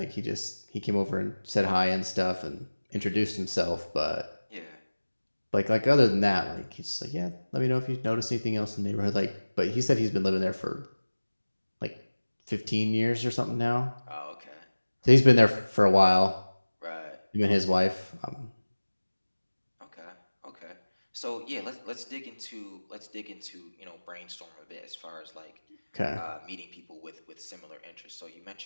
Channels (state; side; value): inverted; both; correlation -1.00